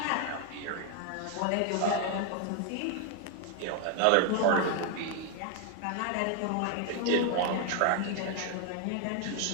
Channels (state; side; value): different; both; correlation 0.01